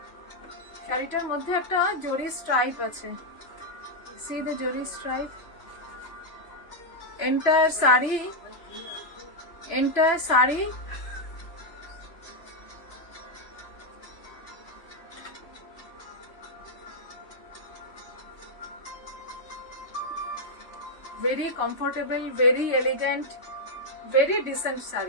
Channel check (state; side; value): late; right; 3.0 ms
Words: শাড়িটার মধ্যে, একটা জরির স্ট্রাইপ আছে। সি দ্য জরি stripe. Entire sari very comfortable, very elegant, very decent